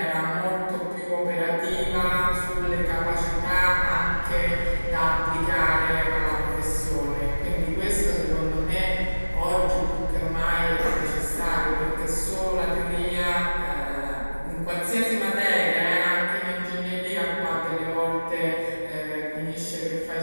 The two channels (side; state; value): both; inverted; correlation -1.00